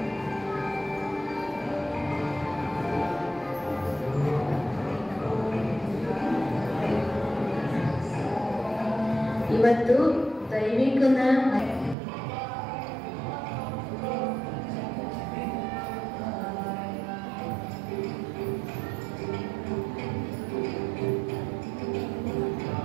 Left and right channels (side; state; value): left; drops out; at 12.0 s